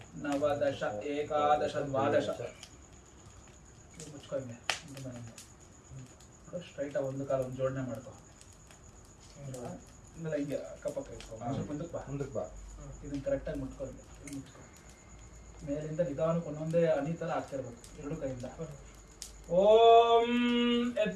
नव दश एकादश द्वादश ಮುಚ್ಕೊಂಡೆ ಸ್ಟ್ರೈಟ್ ಒಂದು ಕಾಲ ಒಂದು ಜೋಡಣೆ ಮಾಡ್ಕೊ ಆಮೇಲೆ ಹಿಂಗೆ ಅಕ್ಕಪಕ್ಕ ಇಟ್ಕೊ ಮುಂದಕ್ಕೆ ಬಾ ಇದನ್ನ ಕರೆಕ್ಟಾಗಿ ಮುಟ್ಕೊಂಡು ಮುಚ್ಕೊ ಮೇಲಿಂದ ನಿಧಾನಕ್ಕೆ ಒಂದೊಂದೇ ಹನಿ ಥರ ಆಗ್ತಿರ್ಬೇಕು ಎರಡು ಕೈಯಿಂದ ಓಂ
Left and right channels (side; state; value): both; identical; correlation 1.00